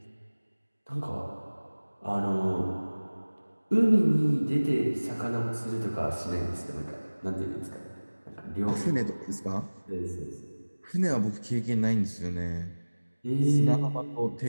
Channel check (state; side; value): inverted; both; correlation -1.00